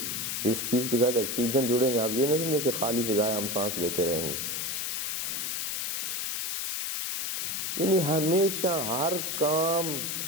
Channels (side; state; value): left; noise; hiss, 2 dB below the sound